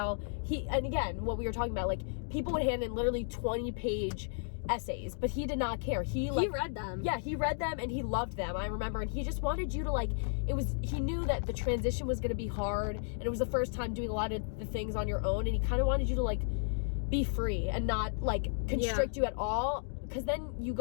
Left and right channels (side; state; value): right; silent; digital silence